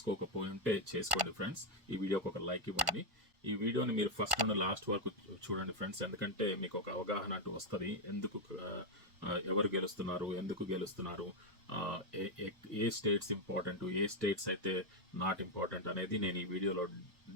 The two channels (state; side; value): late; left; 1.5 ms